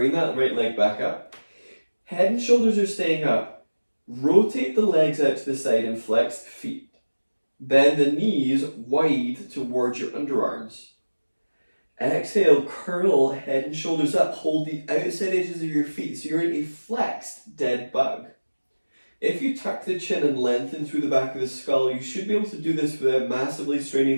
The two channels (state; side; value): inverted; both; correlation -1.00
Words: that right leg back up. Head and shoulders are staying up. Rotate the legs out to the side and flex the feet. Bend the knees wide towards your underarms. Exhale, curl head and shoulders up. Hold the outside edges of your feet so you're in a flexed dead bug. If you tuck the chin and lengthen through the back of the skull, you should be able to do this without massively